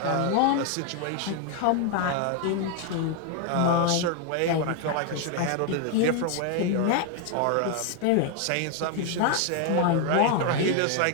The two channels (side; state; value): both; different; correlation 0.01